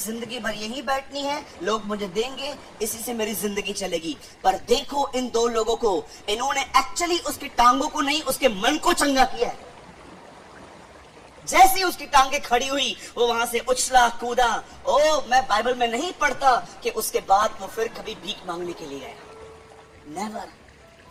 भर यहीं बैठनी है, लोग मुझे देंगे, इसी से मेरी जिंदगी चलेगी। पर देखो इन दो लोगों को, इन्होंने एक्चुअली उसकी टांगों को नहीं, उसके मन को चंगा किया है। जैसे ही उसकी टांगे खड़ी हुई, वो वहां से उछला कूदा। मैं बाइबल में नहीं पढ़ता कि उसके बाद वो फिर कभी भीख मांगने के लिए गया। नेवर।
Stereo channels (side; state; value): both; identical; correlation 1.00